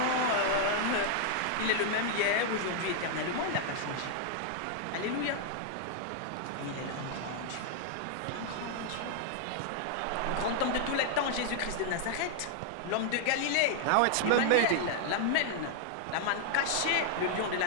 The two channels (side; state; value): both; different; correlation 0.00